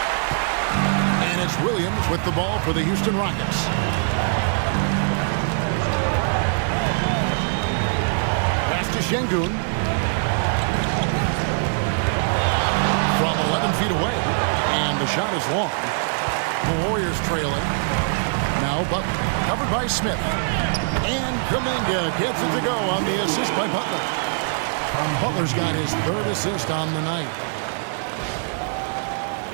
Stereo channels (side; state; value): left; silent; digital silence